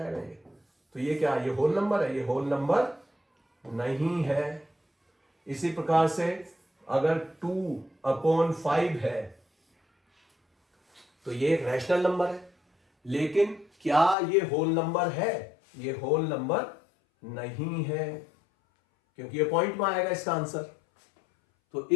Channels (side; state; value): right; drops out; at 14.2 s